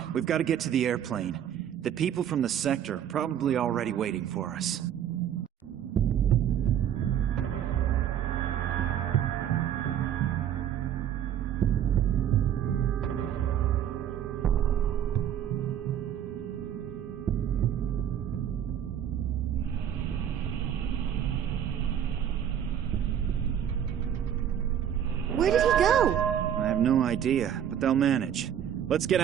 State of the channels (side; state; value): left; quieter; 9.6 dB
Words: we've got to get to the airplane. The people from the sector are probably already waiting for us. Where did he go? I have no idea, but they'll manage. Let's get